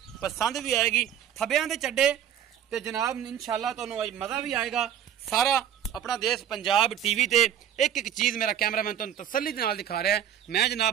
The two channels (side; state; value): left; quieter; 9.9 dB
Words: पसंद भी आएगी। थब्बियां दे चड्डे ते जनाब इंशाअल्लाह तुहानूं अज मज़ा भी आएगा। सारा अपना देश पंजाब टीवी ते एक एक चीज़ मेरा कैमरामैन तुहानूं तसल्ली दे नाल दिखा रहा है। मैं